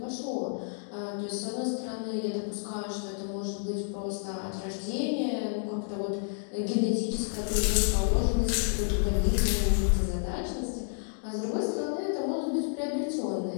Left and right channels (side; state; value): right; silent; digital silence